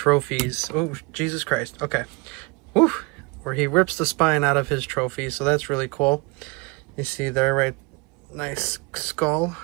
Oh, Jesus Christ. Okay. Woo. Where he rips the spine out of his trophies. So that's really cool. You see there, right? Nice skull.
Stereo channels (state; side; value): quieter; left; 28.5 dB